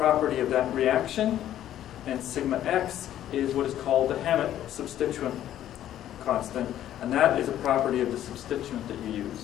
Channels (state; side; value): quieter; right; 11.9 dB